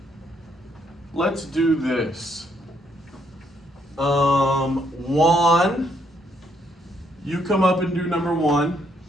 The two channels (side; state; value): both; normal; correlation 0.72